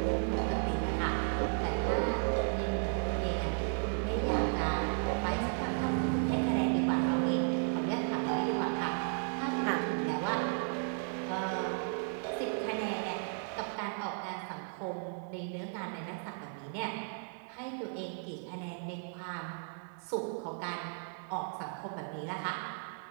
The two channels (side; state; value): left; silent; 55 dB below the other